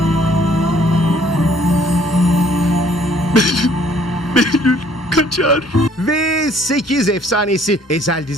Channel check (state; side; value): normal; both; correlation 0.60